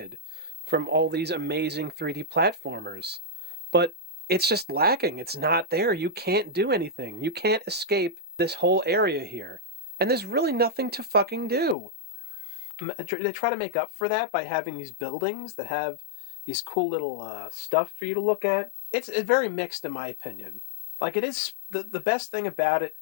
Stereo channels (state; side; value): drops out; right; at 11.8 s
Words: from all these amazing 3D platformers. But it's just lacking. It's not there. You can't do anything. You can't escape this whole area here. And there's really nothing to fucking do. They try to make up for that by having these buildings that have these cool little stuff for you to look at. It's very mixed in my opinion. Like it is, the best thing about it